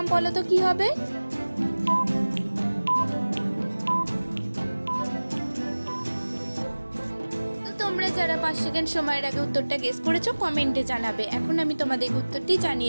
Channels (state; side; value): inverted; both; correlation -1.00